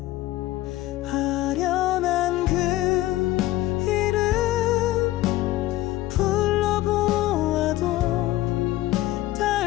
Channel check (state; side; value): quieter; right; 16.3 dB